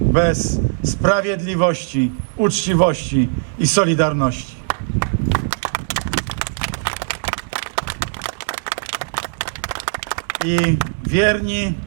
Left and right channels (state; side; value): silent; left; 66 dB below the other